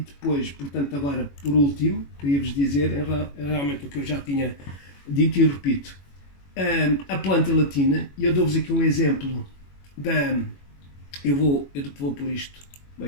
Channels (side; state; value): right; late; 21 ms